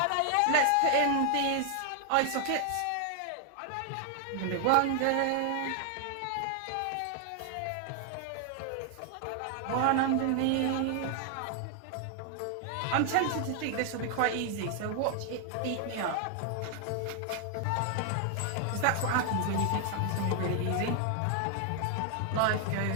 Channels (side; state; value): both; different; correlation 0.00